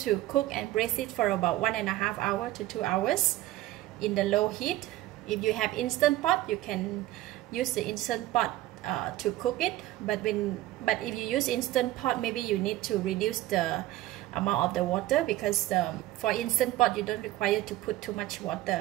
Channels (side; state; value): left; quieter; 15.8 dB